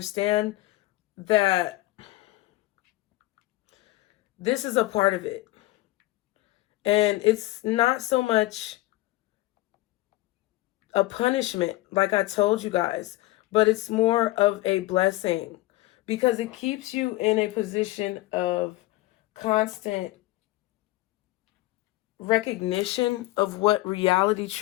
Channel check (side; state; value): right; quieter; 18.6 dB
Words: that this is a part of it. And it's not so much a punishment, like I told you guys, but it's more of a blessing because it keeps you in a position of constant recognition of what reality